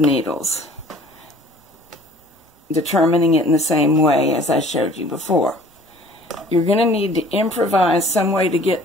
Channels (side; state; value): both; normal; correlation 0.51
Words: determining it in the same way as I showed you before. You're going to need to improvise some way to get